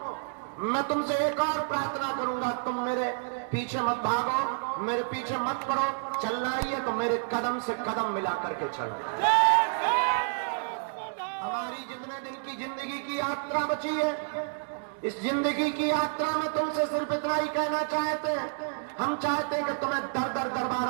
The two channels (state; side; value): silent; left; 58 dB below the other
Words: मैं तुमसे एक और प्रार्थना करूंगा, तुम मेरे पीछे मत भागो, मेरे पीछे मत पड़ो। चलना ही है तो मेरे कदम से कदम मिला करके चलो। हमारी जितने दिन की जिंदगी की यात्रा बची है, इस जिंदगी की यात्रा में तुमसे सिर्फ इतना ही कहना चाहते हैं। हम चाहते हैं कि तुम्हें दर दर